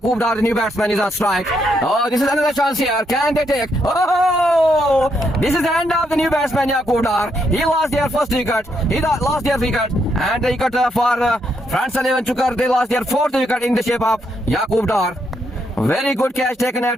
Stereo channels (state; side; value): normal; both; correlation 0.77